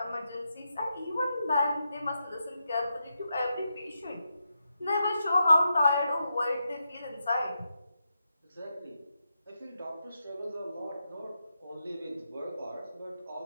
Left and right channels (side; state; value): both; inverted; correlation -0.85